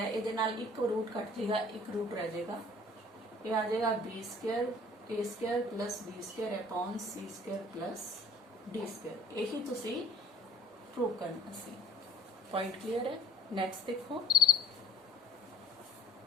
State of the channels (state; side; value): normal; both; correlation 0.56